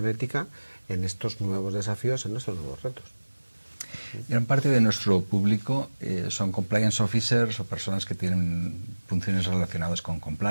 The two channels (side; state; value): both; inverted; correlation -1.00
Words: ética en estos nuevos desafíos, en estos nuevos retos. Gran parte de nuestro público son compliance officers o personas que tienen funciones relacionadas con